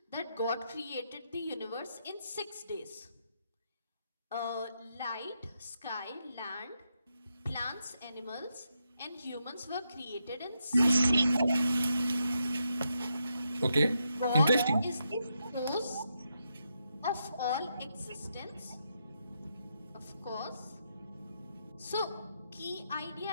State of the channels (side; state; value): both; inverted; correlation -0.82